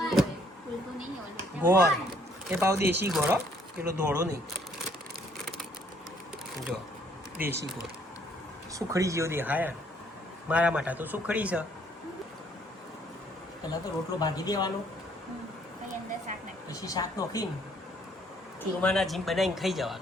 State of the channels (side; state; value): both; normal; correlation 0.64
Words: ગોળ. એ પાવ દેશી ગોળ, પેલો ધોળો નહીં. જો દેશી ગોળ સુખડી જેવો દેખાય. મારા માટે તો સુખડી છે. પહેલાં તો રોટલો ભાગી દેવાનો, પછી શાક નોખીને ચૂરમાના જીમ બનાવીને ખાઈ